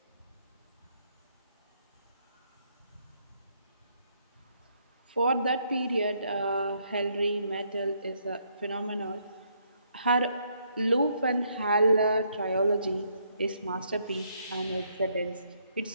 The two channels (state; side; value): inverted; both; correlation -0.72